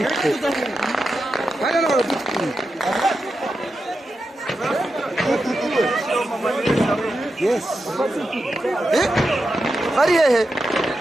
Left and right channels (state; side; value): normal; both; correlation 0.89